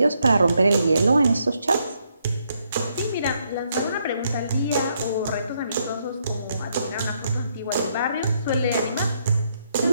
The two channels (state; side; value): inverted; both; correlation -0.75